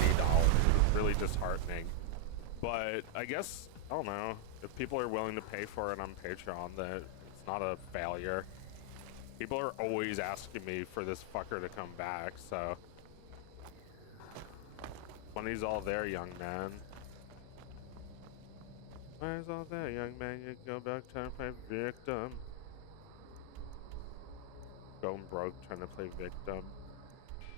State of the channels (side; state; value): both; different; correlation 0.00